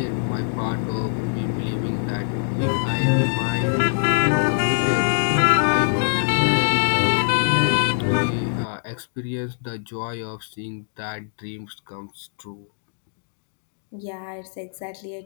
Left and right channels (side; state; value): right; silent; digital silence